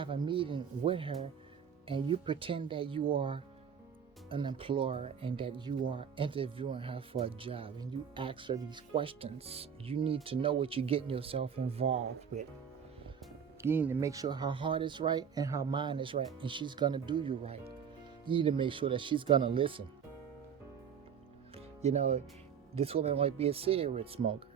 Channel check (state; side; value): quieter; left; 7.5 dB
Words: a meeting with her, and you pretend that you are an employer and that you are interviewing her for a job, and you ask her these questions. You need to know what you're getting yourself involved with. You need to make sure her heart is right and her mind is right, and she's gonna do you right. You need to make sure that she's gonna listen. You know, this woman might be a cigarette smoker.